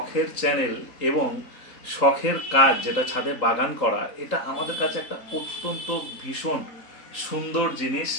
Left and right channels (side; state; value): right; late; 3.7 ms